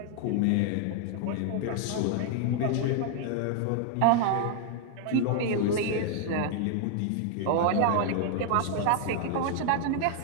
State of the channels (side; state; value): both; different; correlation 0.00